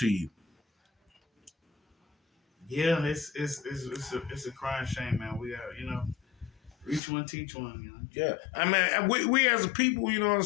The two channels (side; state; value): right; drops out; at 7.0 s